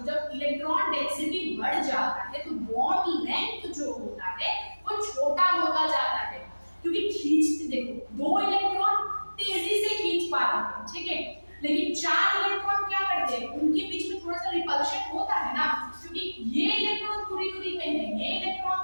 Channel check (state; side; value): inverted; both; correlation -1.00